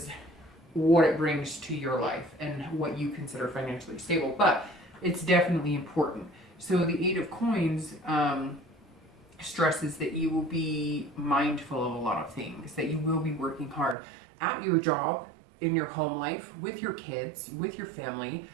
what it brings to your life and what you consider financially stable, but it's definitely important. So the Eight of Coins stresses that you will be mindful of a lot of things, that you will be working hard at your job, in your home life, with your kids, with your family.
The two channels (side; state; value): left; drops out; at 14.0 s